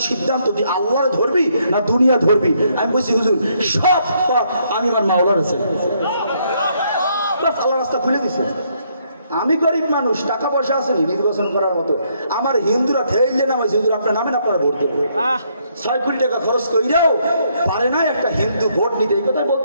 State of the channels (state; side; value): inverted; both; correlation -0.72